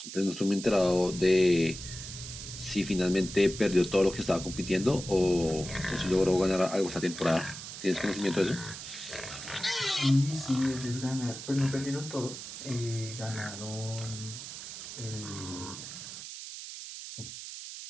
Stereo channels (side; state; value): right; noise; hiss, 10 dB below the sound